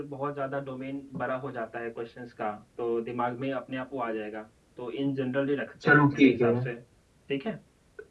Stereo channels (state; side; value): identical; both; correlation 1.00